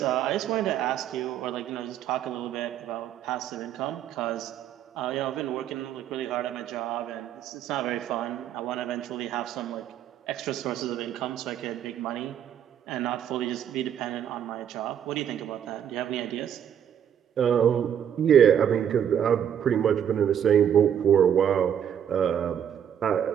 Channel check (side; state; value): left; quieter; 9.2 dB